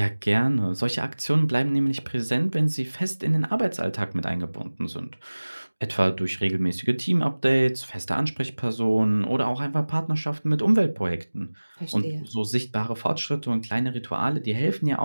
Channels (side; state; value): both; inverted; correlation -1.00